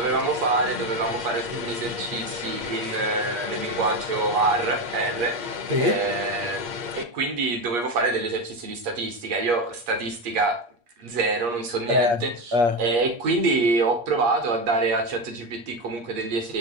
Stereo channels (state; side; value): late; left; 8.5 ms